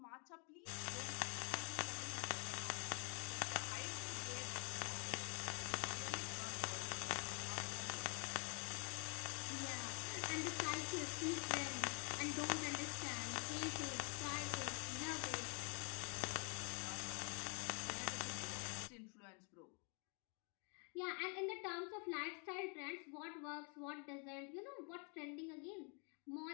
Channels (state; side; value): quieter; right; 36.9 dB